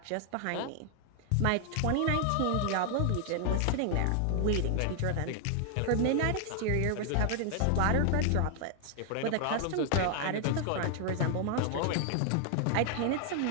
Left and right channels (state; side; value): different; both; correlation 0.00